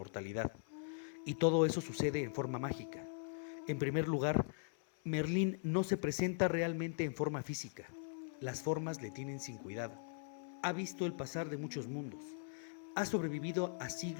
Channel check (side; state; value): right; silent; 51 dB below the other